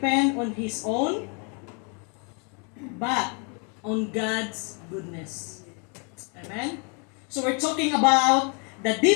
on his own, but on God's goodness. Amen? So we're talking about the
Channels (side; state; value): right; quieter; 35.9 dB